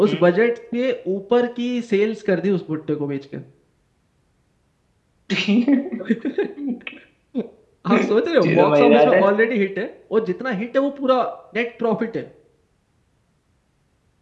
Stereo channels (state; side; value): identical; both; correlation 1.00